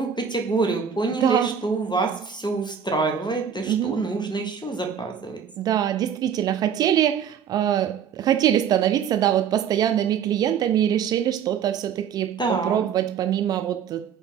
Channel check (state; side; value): quieter; left; 8.0 dB